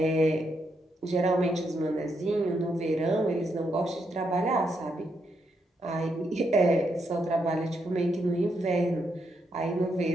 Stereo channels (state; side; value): normal; both; correlation 0.79